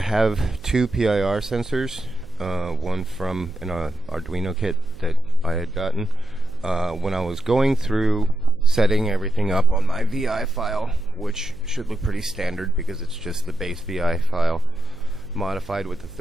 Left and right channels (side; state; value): right; noise; hum, 20 dB below the sound